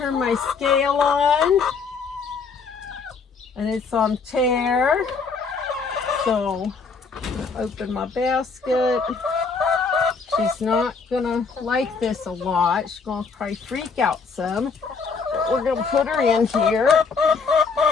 my scale on, and it's on tear. So, open my basket. She's not gonna like this a lot. She's gonna probably freak out some. But we're gonna put her in here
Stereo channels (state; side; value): quieter; right; 5.0 dB